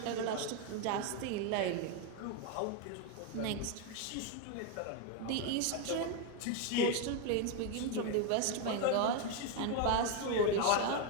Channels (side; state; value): both; different; correlation 0.01